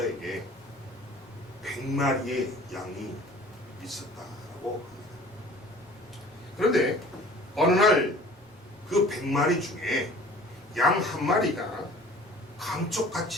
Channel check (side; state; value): both; normal; correlation 0.47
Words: 100마리의 양이 있었다라고 합니다. 그런데 어느 날 그 100마리 중에 양 한 마리가